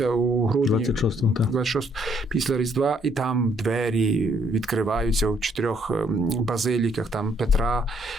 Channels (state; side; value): normal; both; correlation 0.68